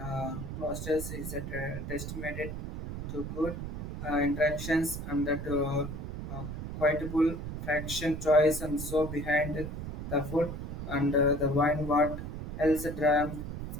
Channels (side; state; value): right; noise; rumble, 6 dB below the sound